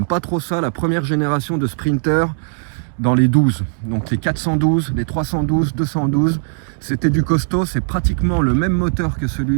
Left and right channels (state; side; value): silent; left; digital silence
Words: pas trop ça, la première génération de Sprinter dans les 12. Donc les 412, les 312, 212, c'était du costaud. C'est pratiquement le même moteur que